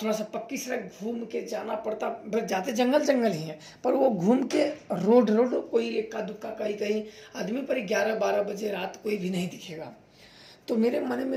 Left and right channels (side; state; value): both; identical; correlation 1.00